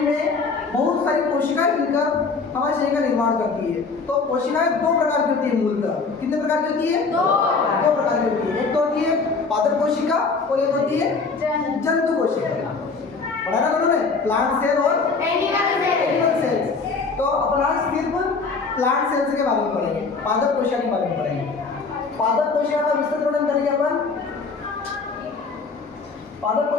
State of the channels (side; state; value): right; quieter; 4.5 dB